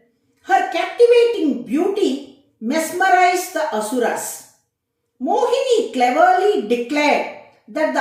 Her captivating beauty mesmerized the Asuras. Mohini cleverly declared that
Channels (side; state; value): both; identical; correlation 1.00